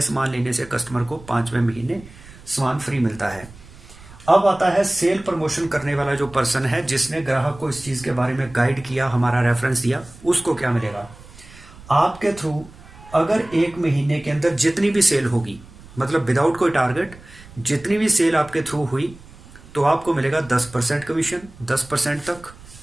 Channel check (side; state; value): right; noise; rumble, 21 dB below the sound